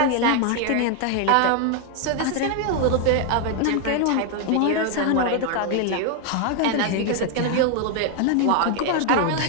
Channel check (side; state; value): both; different; correlation 0.00